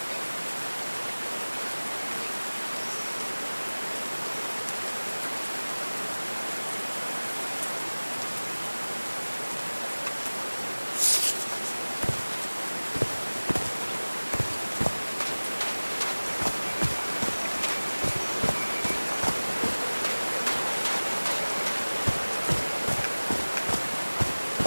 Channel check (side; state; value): both; inverted; correlation -1.00